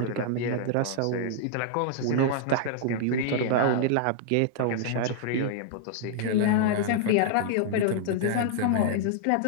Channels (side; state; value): both; different; correlation -0.01